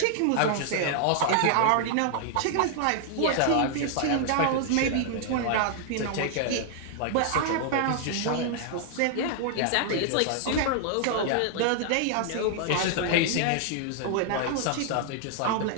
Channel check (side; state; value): both; different; correlation 0.00